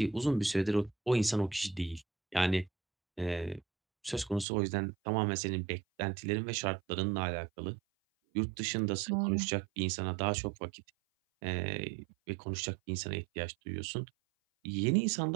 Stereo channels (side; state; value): left; drops out; at 4.5 s